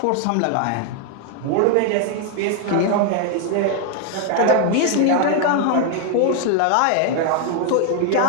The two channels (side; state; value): both; different; correlation 0.00